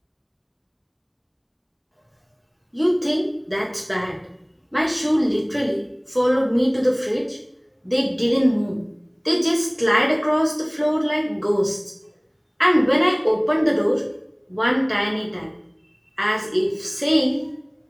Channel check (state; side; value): identical; both; correlation 1.00